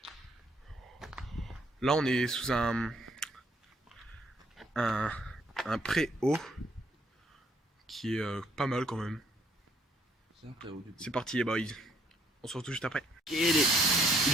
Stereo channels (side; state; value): both; normal; correlation 0.67